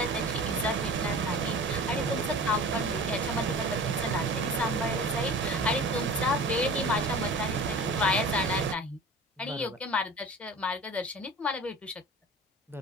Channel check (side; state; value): both; normal; correlation 0.39